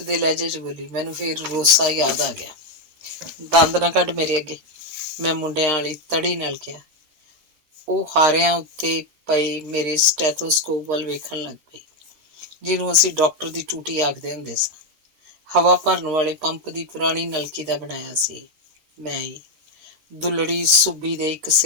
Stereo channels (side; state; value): left; late; 13 ms